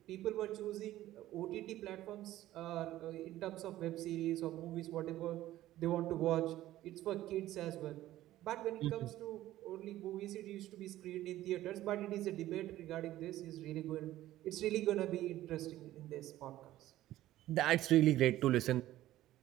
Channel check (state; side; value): quieter; left; 14.7 dB